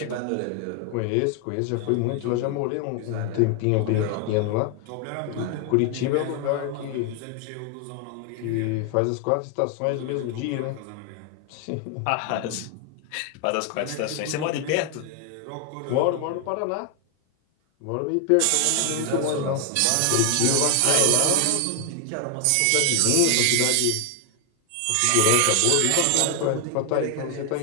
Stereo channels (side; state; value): both; different; correlation 0.00